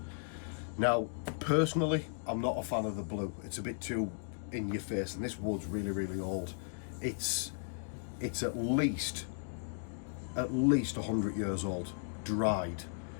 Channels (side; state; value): right; silent; digital silence